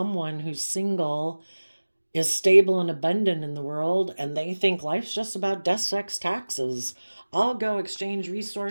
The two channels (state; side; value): inverted; both; correlation -1.00